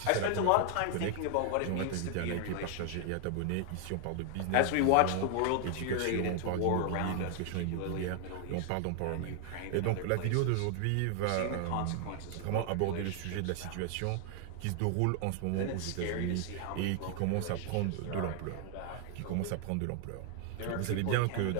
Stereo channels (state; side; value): different; both; correlation 0.00